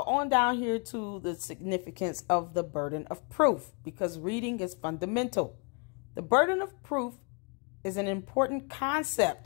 on down here to the significance of the burden of proof, because reading is fundamental. The burden of proof is an important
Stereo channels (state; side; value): quieter; right; 34.7 dB